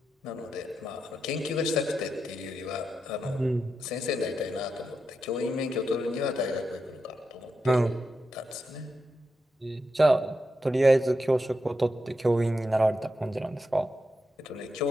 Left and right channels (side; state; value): both; normal; correlation 0.86